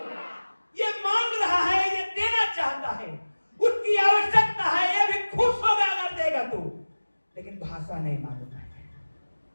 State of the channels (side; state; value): both; inverted; correlation -1.00